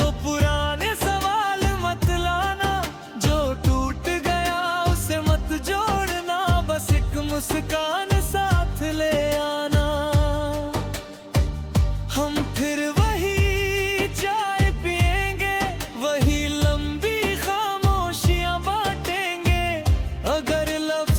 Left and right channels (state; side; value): identical; both; correlation 1.00